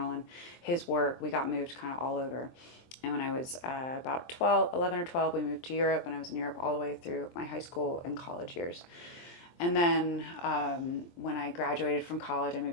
and his work, we got moved kind of all over. And when I was about 11 or 12, we moved to Europe, and I was in Europe all the way through my high school and college years. And then when I graduated from college, I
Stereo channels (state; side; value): late; right; 23 ms